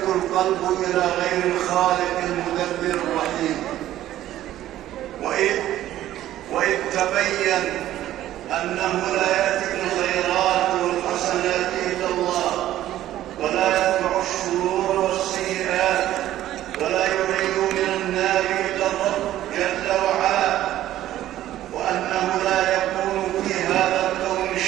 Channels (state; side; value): quieter; left; 13.3 dB